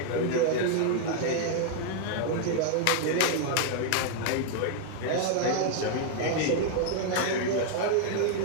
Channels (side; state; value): both; different; correlation 0.00